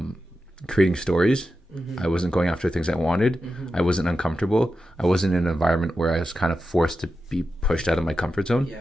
creating stories. Mm-hmm. I wasn't going after things I wanted. Mm-hmm. I wasn't uncomfortable. I wasn't in an environment where I was kind of forced to be pushed out of my comfort zone. Yeah.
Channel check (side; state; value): both; normal; correlation 0.90